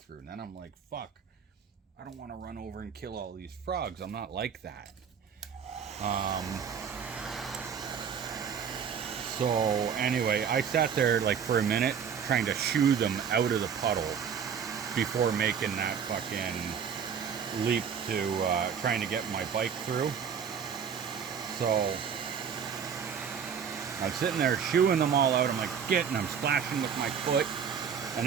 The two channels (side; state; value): left; quieter; 7.2 dB